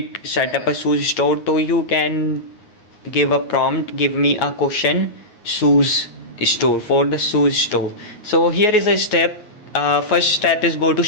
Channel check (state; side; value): late; right; 9.5 ms